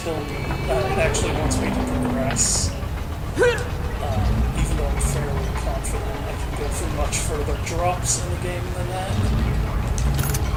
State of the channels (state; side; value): identical; both; correlation 1.00